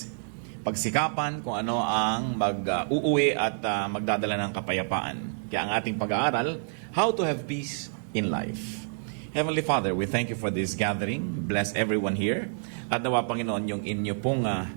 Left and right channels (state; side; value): silent; left; digital silence